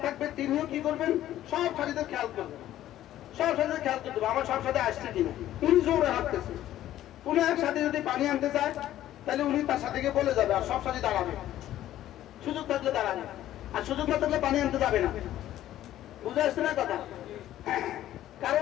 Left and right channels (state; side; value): quieter; right; 13.1 dB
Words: থাকবে তিনিও কি করবেন? সব সাথীদের খেয়াল করবেন, সব সাথীদের খেয়াল করতে হবে আমার সব সাথে আসছে কিনা। উনি জোরে হাঁটতেছে, উনি এক সাথে যদি পানি আনতে চায় তাহলে উনি তার সাথে গিয়ে বলে যাবে, আর সব সাথে দাঁড়াবে। সুযোগ থাকলে দাঁড়াবে, আর সুযোগ না থাকলে পানি আনতে যাবে না। বুঝে আসছে না কথা? কারো